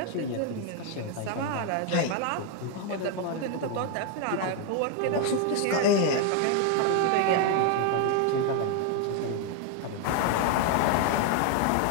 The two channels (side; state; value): both; different; correlation 0.01